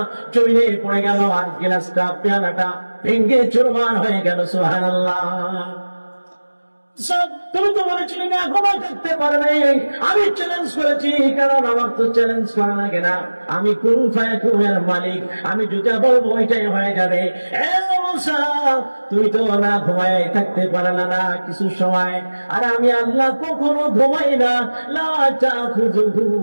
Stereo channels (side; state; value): both; inverted; correlation -1.00